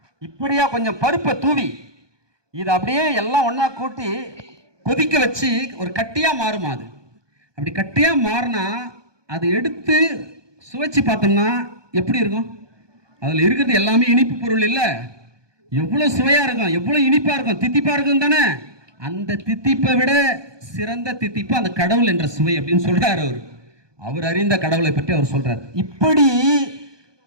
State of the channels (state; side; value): late; left; 1.2 ms